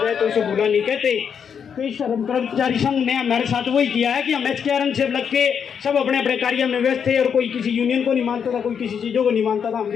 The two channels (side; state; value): right; quieter; 7.3 dB